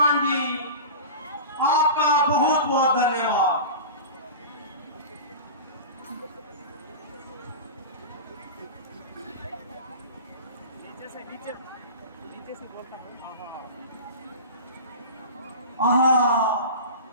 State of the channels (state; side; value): inverted; both; correlation -0.31